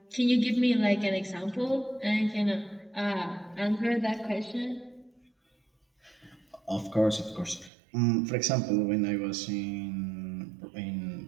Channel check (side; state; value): left; drops out; at 7.7 s